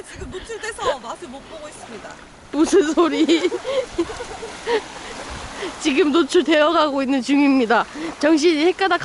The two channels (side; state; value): both; identical; correlation 1.00